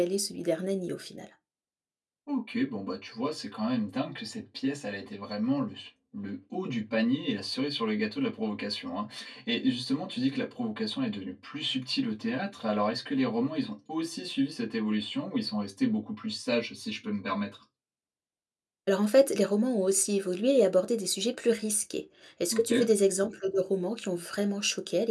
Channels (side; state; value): both; identical; correlation 1.00